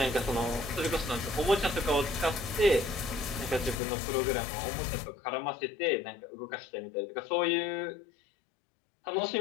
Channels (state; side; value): drops out; right; at 3.8 s